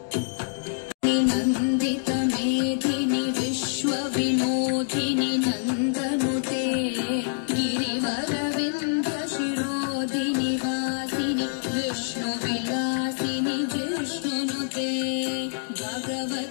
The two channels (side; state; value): right; silent; digital silence